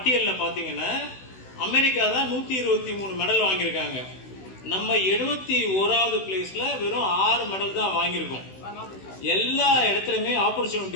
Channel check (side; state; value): right; late; 16 ms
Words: பாத்தீங்கன்னா அமெரிக்கா தான் 123 மெடல் வாங்கியிருக்காங்க. நம்ம 71வது பிளேஸ்ல வெறும் 6 மெடல் தான் வாங்கியிருக்கோம். எல்லா இடத்துலயுமே